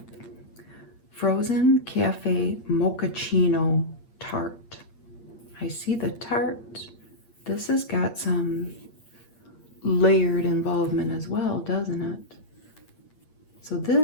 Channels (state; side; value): late; right; 8.7 ms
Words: Frozen Cafe Mochaccino Tart. I see the tart. This has got some layered involvement as well, doesn't it? So